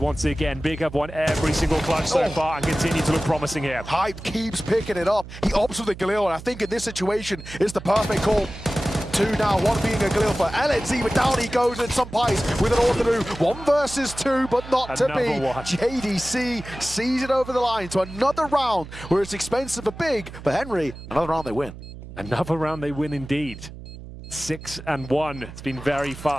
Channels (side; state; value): right; noise; hum, 14 dB below the sound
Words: again. Big have won every single clutch so far and continue to look promising here. Hype keeps picking it up. He opts for the Galil, and I think in this situation, it's the perfect call. 2 now, 1 being a Galil for LNZ, but down he goes, and some Pies with an Orthodox. 1 versus 2, but not to be. JDC sees it over the line to another round where it's expensive but big. But Henry, another round they win. Another round they win indeed. 6-1. It's been very